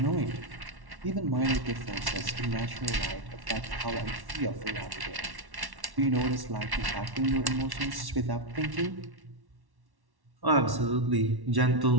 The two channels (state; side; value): late; left; 1.1 ms